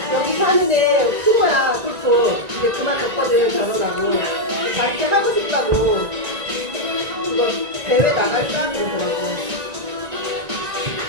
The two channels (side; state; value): left; late; 1.9 ms